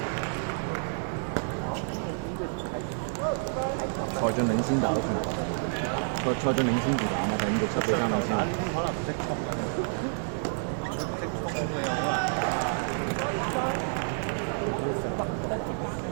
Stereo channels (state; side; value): silent; left; digital silence